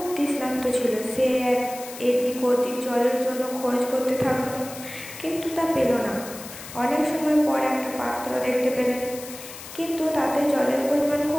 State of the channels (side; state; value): left; noise; hiss, 13 dB below the sound